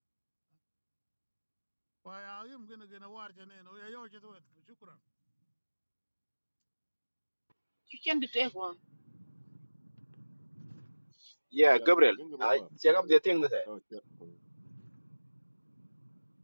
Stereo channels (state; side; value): inverted; both; correlation -1.00